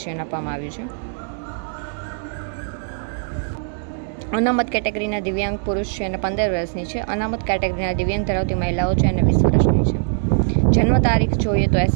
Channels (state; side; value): silent; left; digital silence